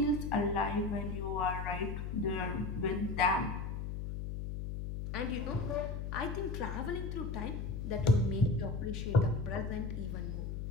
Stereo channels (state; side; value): noise; left; hum, 4 dB below the sound